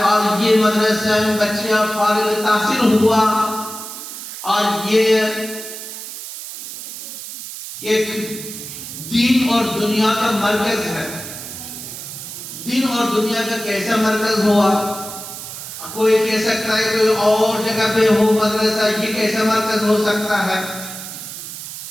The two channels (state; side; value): noise; right; hiss, 10 dB below the sound